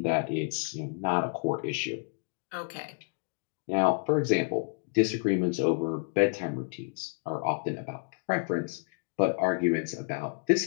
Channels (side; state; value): right; quieter; 38.2 dB